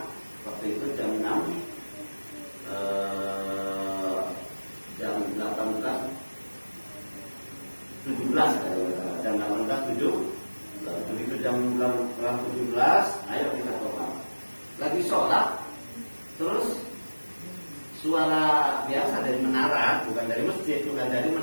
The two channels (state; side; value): inverted; both; correlation -1.00